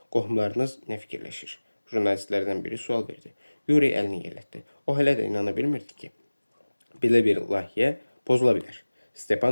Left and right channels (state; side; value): inverted; both; correlation -1.00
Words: qohumlarınız nə fikirləşir? Jurnalistlərdən biri sual verdi. Yuri əlini yellətdi. O hələ də inana bilmirdi ki, belə bir layihə pozula bilər.